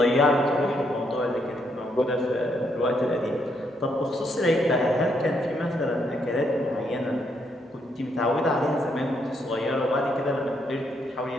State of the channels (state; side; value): normal; both; correlation 0.75